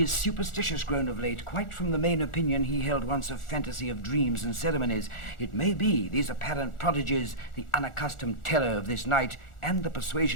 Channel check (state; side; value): late; right; 1.4 ms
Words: is superstitious grown of late, quite from the main opinion he held once of fantasy of dreams and ceremonies. It may be these apparent prodigies, the unaccustomed terror of this night, and the